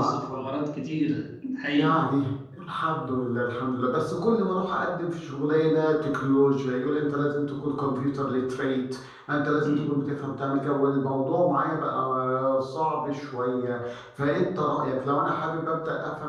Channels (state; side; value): identical; both; correlation 1.00